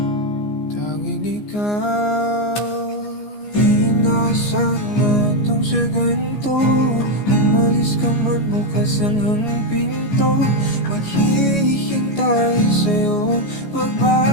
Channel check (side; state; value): right; late; 14 ms